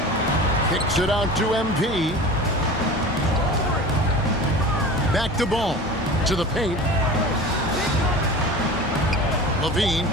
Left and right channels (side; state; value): both; normal; correlation 0.36